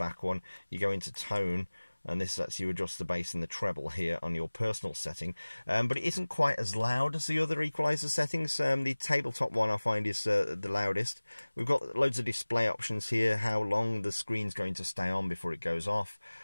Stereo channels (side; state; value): both; inverted; correlation -1.00